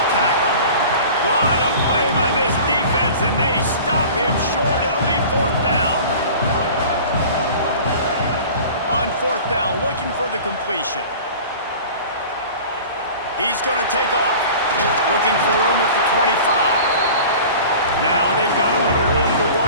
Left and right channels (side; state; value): both; inverted; correlation -0.41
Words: tackle. What a play by this defense, and they stop him short. It'll be 4th down. On 4th down, looking for the completion. He's going to take off. Looking for room at the 25. Now they've got a little room to